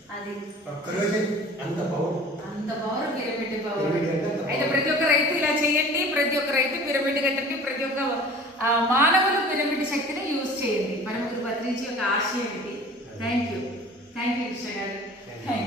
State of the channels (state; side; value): normal; both; correlation 0.44